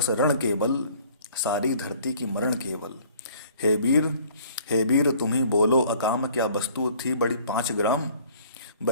रण केवल, सारी धरती की मरण केवल। हे वीर, हे वीर तुम ही बोलो अकाम, क्या वस्तु थी बड़ी 5 ग्राम।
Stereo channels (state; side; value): inverted; both; correlation -0.54